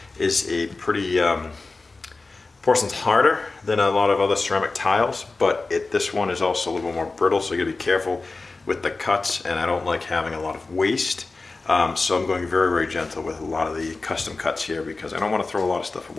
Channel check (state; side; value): quieter; right; 3.6 dB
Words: is a pretty, porcelain's harder than a lot of other ceramic tiles, but this one is also a little more brittle, so you gotta be careful with the cuts, and I don't like having a lot of waste. So I'm going very, very gentle with a lot of the custom cuts here because I don't want to throw a lot of stuff